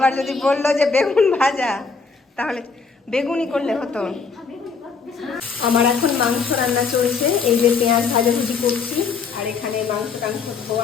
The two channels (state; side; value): quieter; right; 5.1 dB